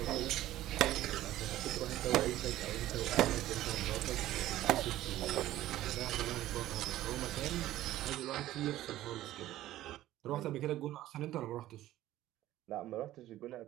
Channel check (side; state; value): left; quieter; 14.5 dB